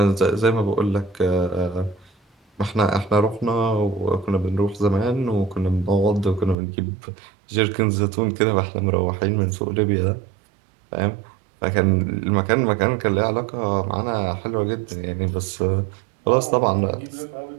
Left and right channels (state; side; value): drops out; left; at 6.6 s